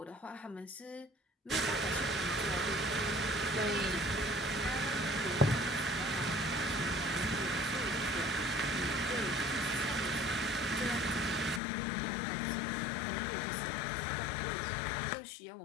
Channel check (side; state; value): right; drops out; at 11.6 s